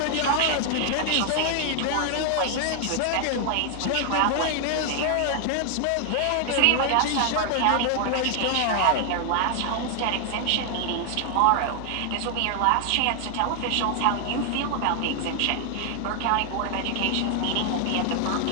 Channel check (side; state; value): both; different; correlation 0.00